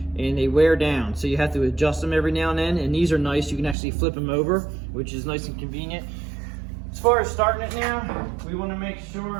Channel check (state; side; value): drops out; left; at 3.8 s